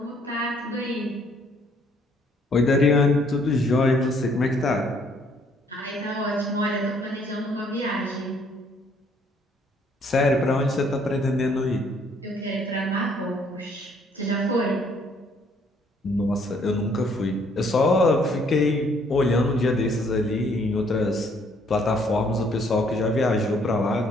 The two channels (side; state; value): both; normal; correlation 0.65